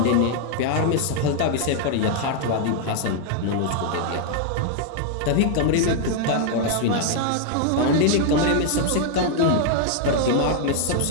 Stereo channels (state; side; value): different; both; correlation 0.00